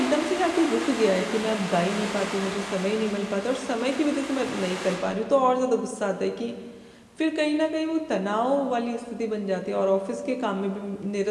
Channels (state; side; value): identical; both; correlation 1.00